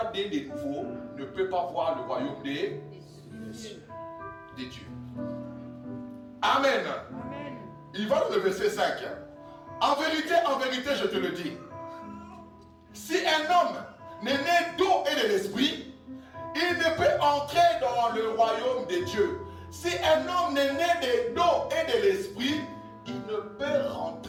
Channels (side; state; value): both; identical; correlation 1.00